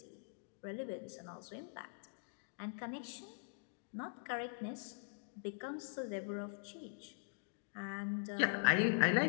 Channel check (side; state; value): right; silent; digital silence